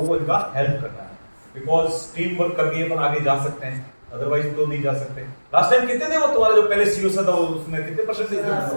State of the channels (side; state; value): both; inverted; correlation -1.00